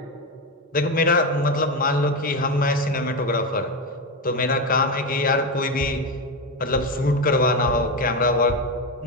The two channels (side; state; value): both; normal; correlation 0.13